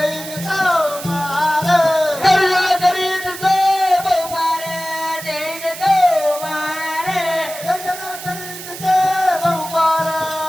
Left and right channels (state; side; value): noise; right; hiss, 11 dB below the sound